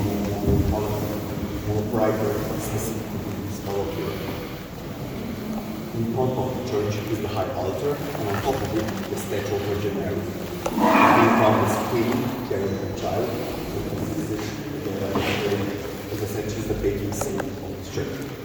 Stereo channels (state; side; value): identical; both; correlation 1.00